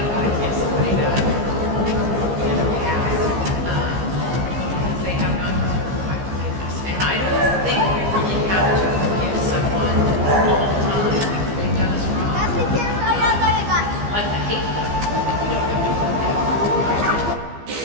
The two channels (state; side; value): late; left; 15 ms